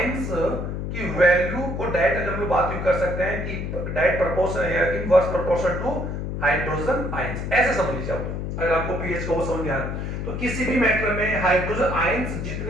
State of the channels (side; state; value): left; noise; hum, 4 dB below the sound